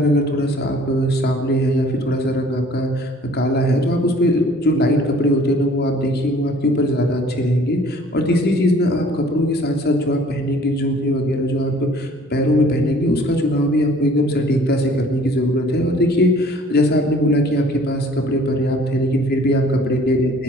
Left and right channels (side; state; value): both; normal; correlation 0.53